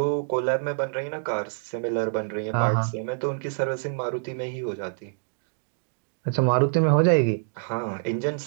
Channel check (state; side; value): silent; left; digital silence